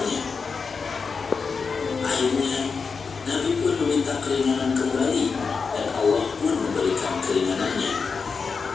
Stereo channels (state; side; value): quieter; right; 5.1 dB